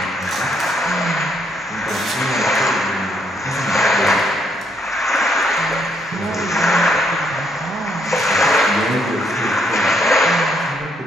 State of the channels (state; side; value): normal; both; correlation 0.72